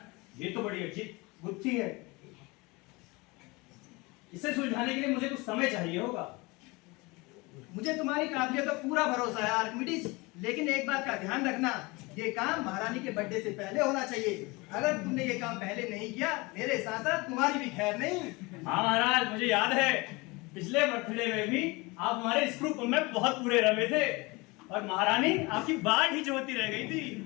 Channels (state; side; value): quieter; right; 24.8 dB